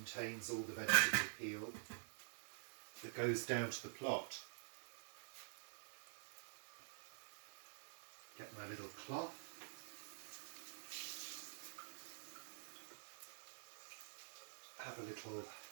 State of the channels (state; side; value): silent; left; digital silence